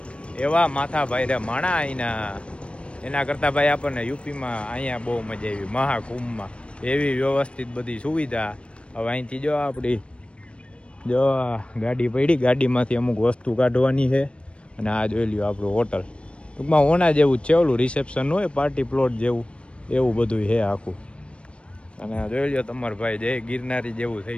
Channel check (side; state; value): right; late; 0.059 ms